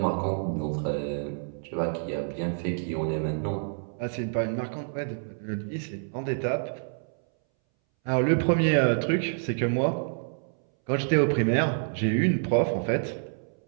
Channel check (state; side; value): silent; left; 60 dB below the other